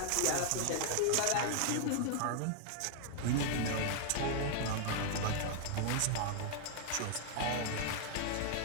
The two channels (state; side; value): different; both; correlation 0.00